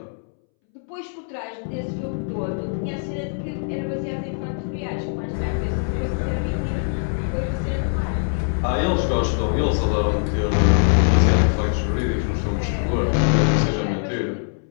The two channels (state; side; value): silent; right; 64 dB below the other